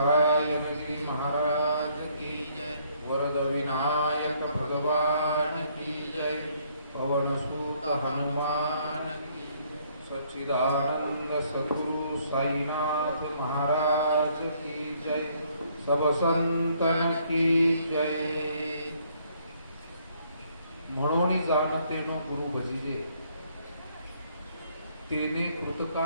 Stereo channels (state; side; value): inverted; both; correlation -0.66